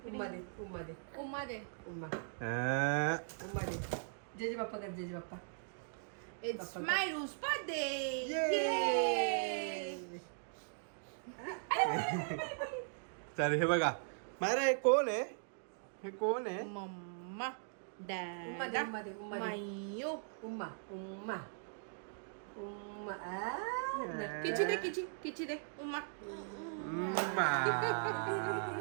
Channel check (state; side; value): silent; left; digital silence